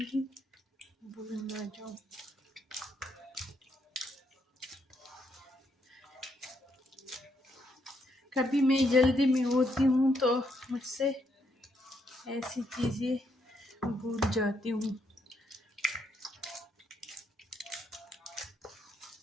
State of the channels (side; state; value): both; normal; correlation 0.76